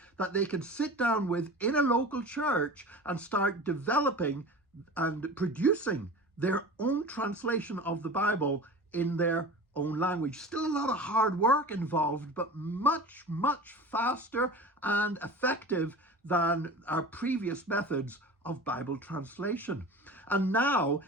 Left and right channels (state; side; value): normal; both; correlation 0.36